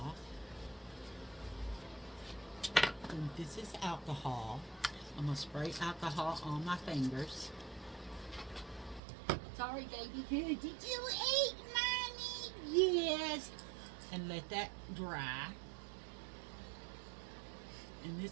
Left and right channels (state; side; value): drops out; left; at 9.0 s